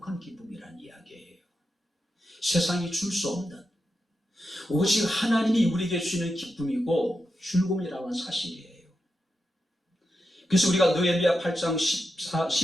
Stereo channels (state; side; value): normal; both; correlation 0.88